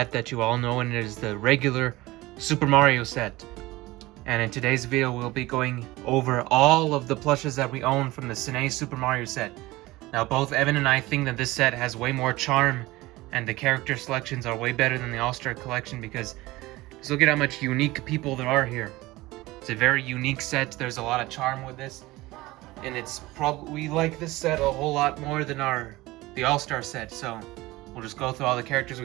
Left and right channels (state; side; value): quieter; left; 19.5 dB